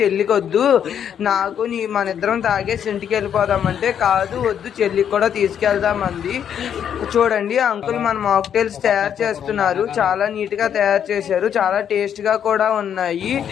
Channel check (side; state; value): right; quieter; 8.8 dB